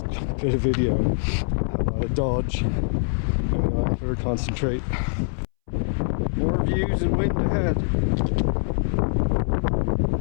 did a video, dodge, and better concentrate. More views and wind ahead.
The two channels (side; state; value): right; silent; 62 dB below the other